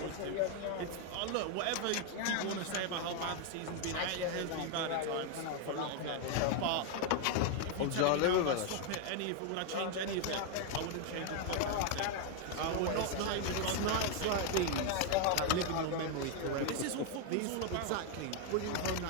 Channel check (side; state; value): both; different; correlation 0.01